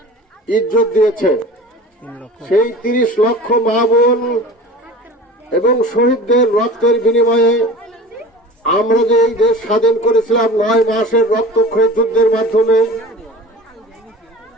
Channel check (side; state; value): both; normal; correlation 0.38